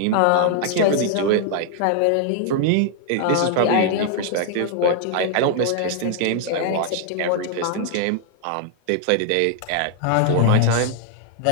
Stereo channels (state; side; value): different; both; correlation 0.00